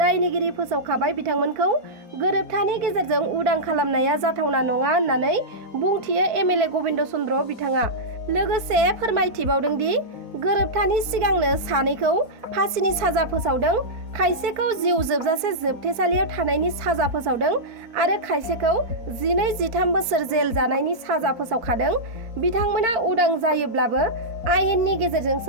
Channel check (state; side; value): late; left; 4.6 ms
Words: फोसावखाबाय बिथांमोनखौ गोरोबथानि गेजेरजों उदां खालामनाया जाथावना नङा होननानै बुंथियो एमएलए गबिन्द चन्द्र बिथाङा। लोगोसे फोरमायथिबावदों दि गोरोबथानि सिगांनो सानैखौ फासिनि साजा फोसावदों, खायसेखौ जिउ जोबजासे जोबथेसालियाव थानायनि साजा फोसावदों आरो खायसेखौ 12-13 बोसोर जेल जानायनि साजा फोसावखादों। बिथांमोना उदां जायोब्लाबो आयेननि